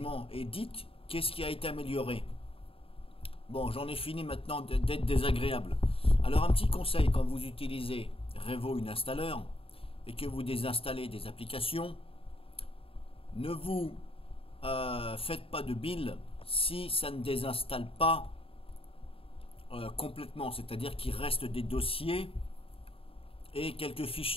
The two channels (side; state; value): right; late; 0.27 ms